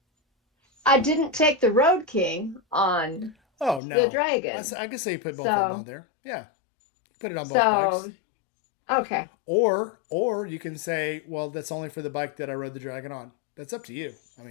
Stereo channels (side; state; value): right; drops out; at 3.8 s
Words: I didn't take the Road King on Oh no, the Dragon. I can say you put both of them on there. Yeah, put it on both bikes. Okay. Or you can say, well, that's only for the bike that I rode the Dragon on. That's up to you. I